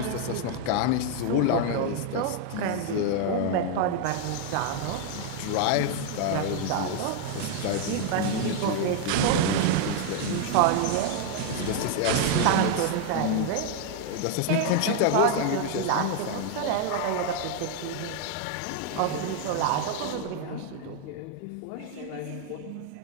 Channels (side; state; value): both; different; correlation 0.00